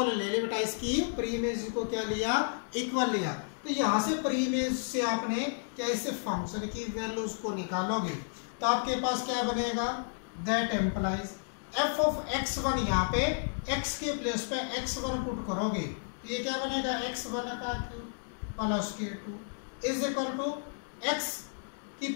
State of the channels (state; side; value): silent; right; digital silence